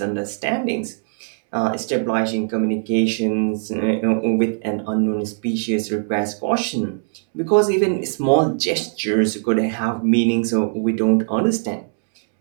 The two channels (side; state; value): left; silent; digital silence